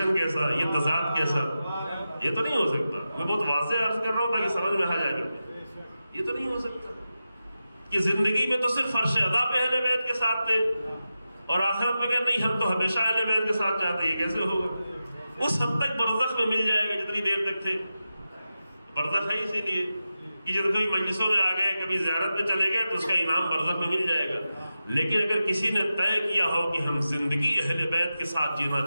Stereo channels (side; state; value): both; inverted; correlation -0.92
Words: کیسا، یہ تضاد کیسا؟ یہ تو نہیں ہو سکتا۔ میں بہت واضح عرض کر رہا ہوں تاکہ سمجھ میں آ جائے، یہ تو نہیں ہو سکتا کہ زندگی میں تو صرف فرش ادا پہ اہل بیت کے ساتھ تھے اور آخرت میں کہ نہیں ہم تو ہمیشہ اہل بیت کے ساتھ جاتے ہیں، یہ کیسے ہوگا؟ اس حد تک برزخ میں مل جائے گا جتنی دیر تک تھے۔ برزخ ہے اسی لیے کہ جب کوئی مجلسوں میں آ گئے، کبھی زیارت میں چلے گئے تو اس کا انعام برزخ میں مل جائے گا۔ لیکن اگر کسی نے طے کیا ہو کہ ہم زندگی اہل بیت کے ساتھ جینا